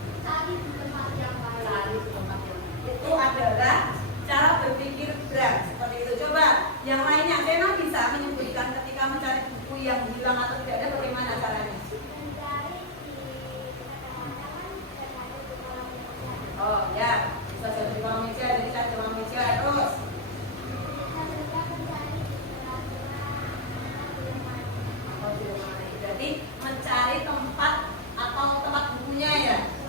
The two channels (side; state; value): both; normal; correlation -0.06